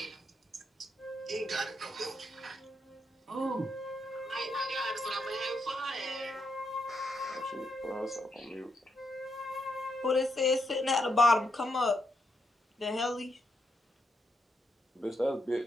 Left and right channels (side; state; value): both; normal; correlation 0.80